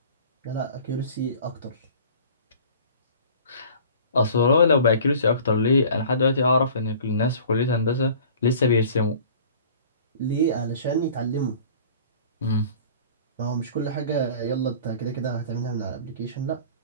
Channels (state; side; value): inverted; both; correlation -0.45